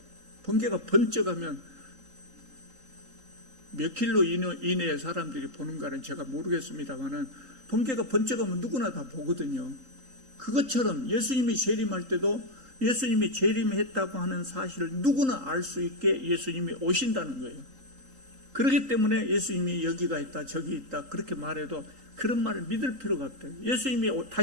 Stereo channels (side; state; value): left; late; 3.8 ms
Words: 번개가 번쩍하면 몇 킬로 이내에 사람들이 보는가는 제가 모르겠습니다만은 번개가 번쩍하면 누구나 다 보거든요. 그것처럼 예수님이 재림할 때도 예수님이 재림했다고 하는 사실을 누구나 알 수 있게 예수님이 오신다는 거예요. 그렇기 때문에 예수님이 여기가 있다 저기 있다 그렇게 말해도 그런 말을 믿을 필요가 없대요. 예수님이